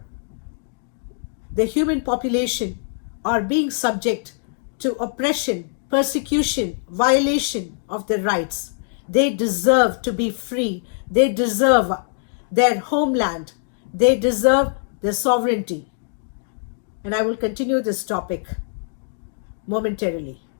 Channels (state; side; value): silent; right; digital silence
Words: the human population are being subject to oppression, persecution, violation of their rights. They deserve to be free. They deserve their homeland. They deserve their sovereignty. And I will continue this topic momentarily.